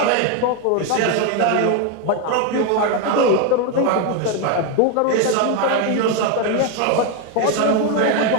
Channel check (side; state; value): both; different; correlation 0.02